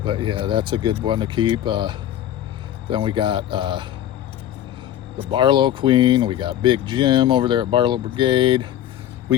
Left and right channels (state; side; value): quieter; right; 11.7 dB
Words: But yeah, that's a good one to keep. Then we got the Barlow Queen. We got Big Jim over there at Barlow Brigade. We